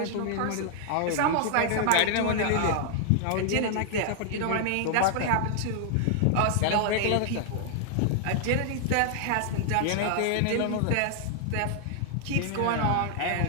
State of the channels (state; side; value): different; both; correlation 0.00